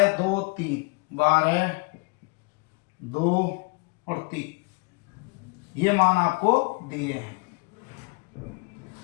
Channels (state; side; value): quieter; right; 30.4 dB